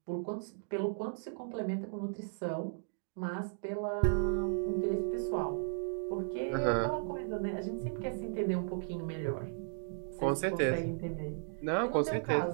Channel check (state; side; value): silent; left; digital silence